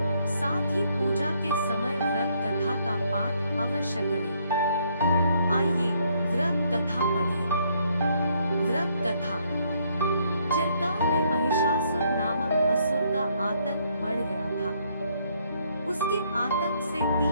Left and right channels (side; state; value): both; inverted; correlation -0.70